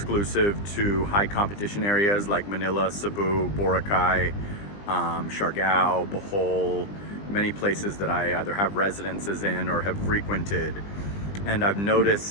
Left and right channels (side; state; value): right; late; 20 ms